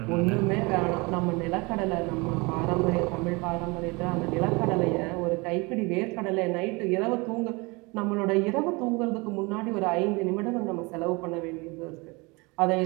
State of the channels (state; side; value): quieter; left; 26.6 dB